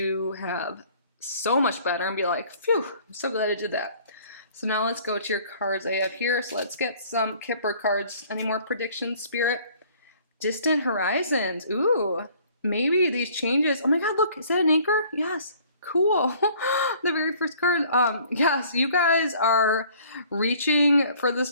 have so much better and be like, phew, I'm so glad I did that. So now let's go to your cards I have here. So let's get some Kipper cards. Any more predictions, Spirit? Distant horizons. Ooh, maybe these changes. Oh my God, look, is that an anchor? Yes. Cool. The very first card. Yes, you guys are reaching for the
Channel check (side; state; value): both; inverted; correlation -0.55